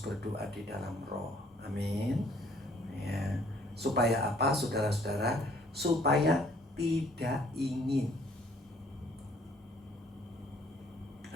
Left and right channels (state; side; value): normal; both; correlation 0.61